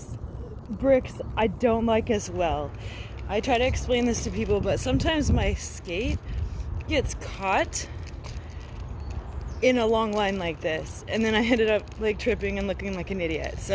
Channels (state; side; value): identical; both; correlation 1.00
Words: bricks I don't like as well. I try to explain this to people, but sometimes my skate gets caught in a long line like this, and then I ended up like tripping and looking like an idiot.